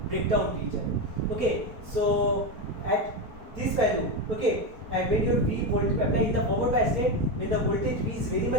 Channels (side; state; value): left; late; 4.4 ms